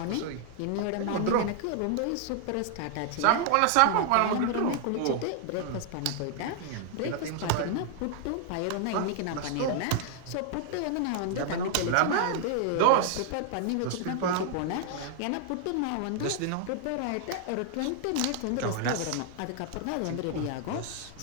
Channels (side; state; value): both; different; correlation 0.00